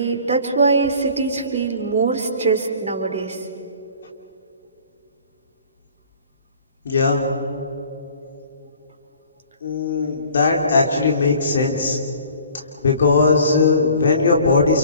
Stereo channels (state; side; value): inverted; both; correlation -0.51